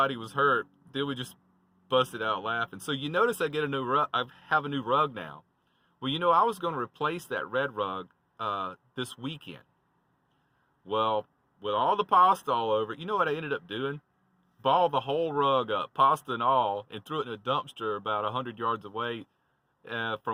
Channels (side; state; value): both; identical; correlation 1.00